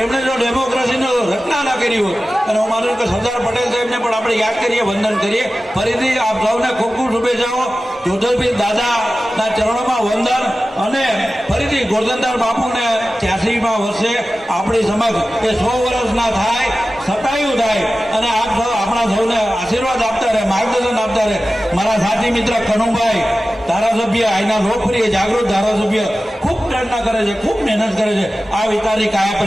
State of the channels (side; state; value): both; normal; correlation 0.95